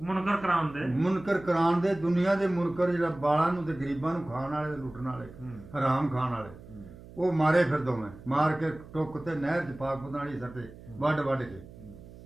ਮੁਨਕਰ ਕਰਾਉਣ ਦੇ ਮੁਨਕਰ ਕਰਾਉਣ ਦੇ ਦੁਨੀਆ ਦੇ ਮੁਨਕਰ ਜਿਹੜਾ ਬਾਲਾਂ ਨੂੰ ਤੇ ਗਰੀਬਾਂ ਨੂੰ ਖਾਣ ਵਾਲੇ ਲੁੱਟਣ ਵਾਲੇ ਹਰਾਮ ਖਾਣ ਵਾਲੇ ਉਹ ਮਾਰੇ ਫਿਰ ਦੋਵੇਂ ਮਾਰ ਕੇ ਟੁੱਕ ਤੇ ਨਹਿਰ ਚ ਪਾਕ ਪਤਾਲੀ ਸੱਟੇ ਵੱਢ ਵੱਢ ਕੇ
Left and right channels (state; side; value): noise; right; hum, 18 dB below the sound